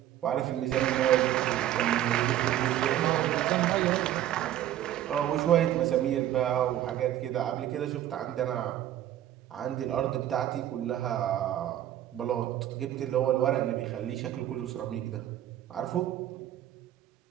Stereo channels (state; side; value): quieter; left; 12.2 dB